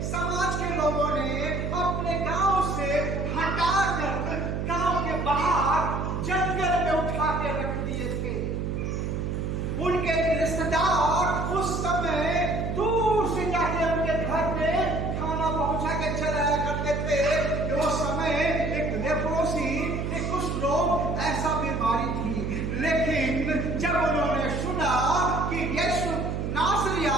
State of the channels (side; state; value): right; noise; hum, 2 dB below the sound